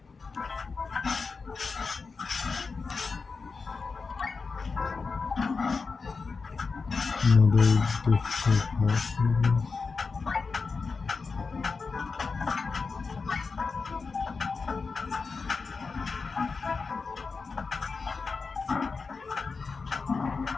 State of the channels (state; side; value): quieter; right; 4.6 dB